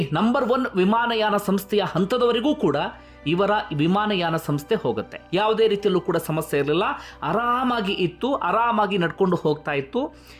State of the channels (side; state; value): both; identical; correlation 1.00